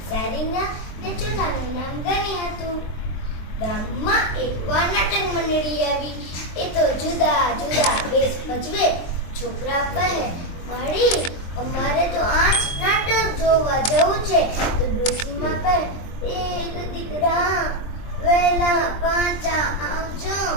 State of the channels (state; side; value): late; right; 23 ms